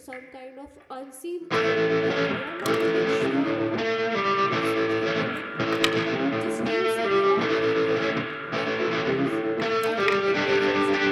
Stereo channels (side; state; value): both; identical; correlation 1.00